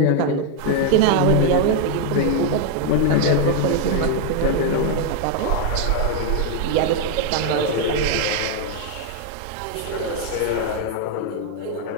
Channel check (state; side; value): different; both; correlation 0.00